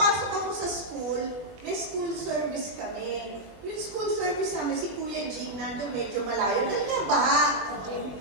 ako sa school, may school service kami. Yung school service namin, si Kuya Jing, nandun medyo malayo. Dahil nga baha.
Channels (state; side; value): late; left; 20 ms